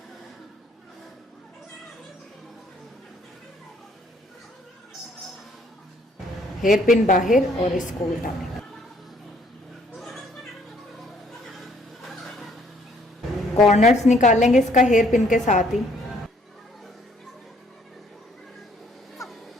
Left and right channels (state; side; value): normal; both; correlation 0.64